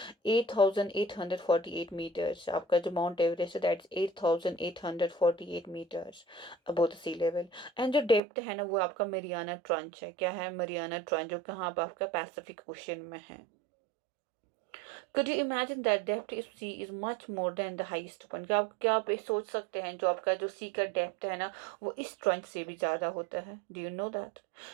8848 मीटर्स। आपका जो माउंट एवरेस्ट है, that's 8848 metres above the sea level. And जो डेप्थ है ना, वो आपका मरियाना ट्रंच है। क्या है, मरियाना ट्रंच, जो कहाँ पर आपका पैसिफिक ओशन में है। Could you imagine that depth of sea is much more than the highest point? क्या आप ये सोच सकते हैं, जो आपका जो सी का डेप्थ है ना, वो इस ट्रंच से भी ज़्यादा होता है। Do you know that?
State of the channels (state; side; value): drops out; left; at 8.2 s